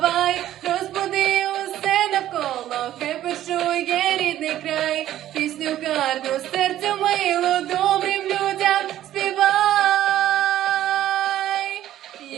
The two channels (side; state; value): left; quieter; 12.8 dB